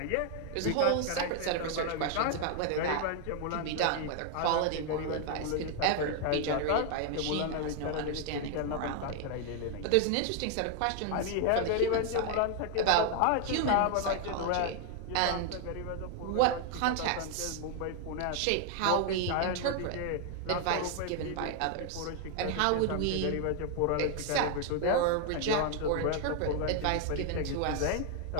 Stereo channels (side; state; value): both; different; correlation 0.00